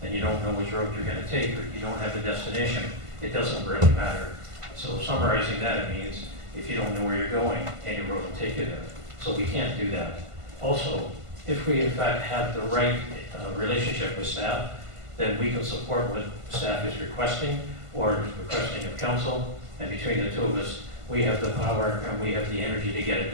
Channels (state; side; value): late; left; 1.5 ms